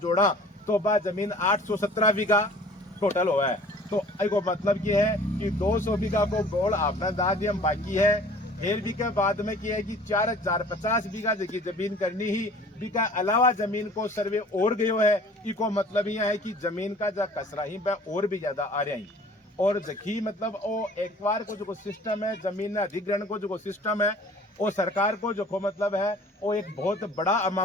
जोड़ा तो बा जमीन 817 बीघा टोटल हुआ है। तो एक मतलब ये है कि 200 बीघा को बोल आपने दादियम बाकी है फिर भी के बाद में किया है कि 4050 बीघा की जमीन करनी ही बीघा अलावा जमीन को सर्वे और गयो है। इको मतलब यह है कि जमीन का जो कसरा ही और भी ज्यादा आ रहा है और जखी मतलब वो एक बार को जो सिस्टम है जमीन अधिग्रहण को जो सिस्टम है वो सरकार को जो मतलब है वो एक बहुत बड़ा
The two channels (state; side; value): normal; both; correlation 0.49